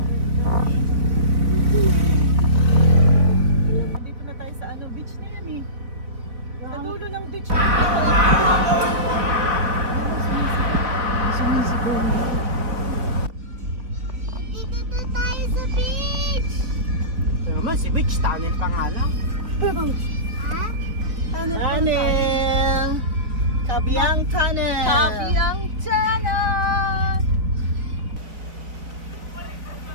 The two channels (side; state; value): left; late; 3.8 ms